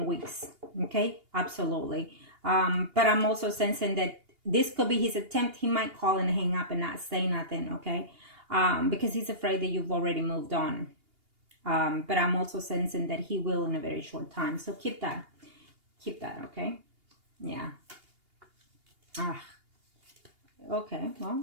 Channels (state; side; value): late; left; 2.8 ms